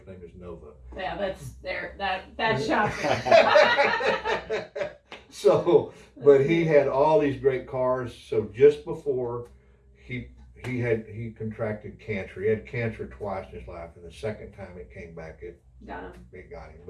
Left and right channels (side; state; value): both; identical; correlation 1.00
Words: name is Nova. Yeah, that's shocking. So, but he had all these great cars. So just before he contracted cancer, he had cancer twice in his life, and the second time it came back, it got him.